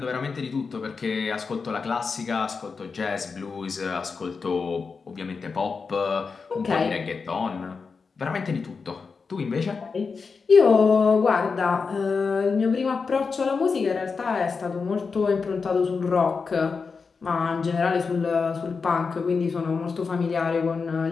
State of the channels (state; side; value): quieter; right; 5.0 dB